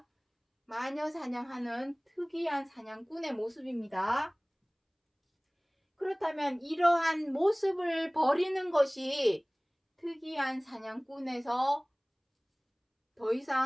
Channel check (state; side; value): identical; both; correlation 1.00